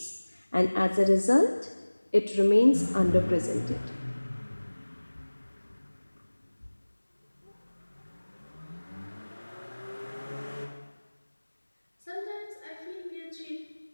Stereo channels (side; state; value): both; inverted; correlation -1.00